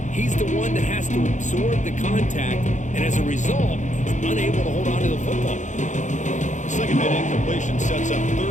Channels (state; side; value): late; right; 0.35 ms